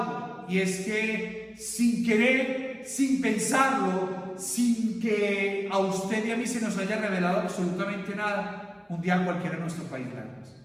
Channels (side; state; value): both; identical; correlation 1.00